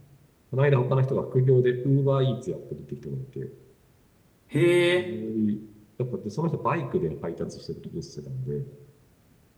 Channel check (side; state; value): both; identical; correlation 1.00